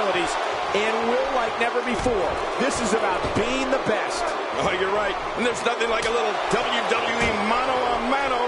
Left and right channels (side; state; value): both; identical; correlation 1.00